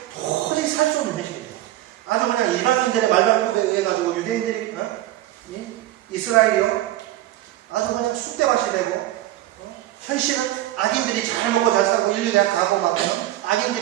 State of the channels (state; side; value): quieter; left; 14.8 dB